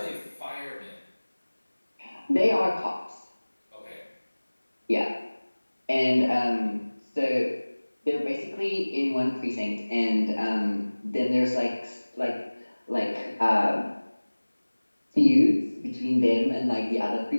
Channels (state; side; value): inverted; both; correlation -1.00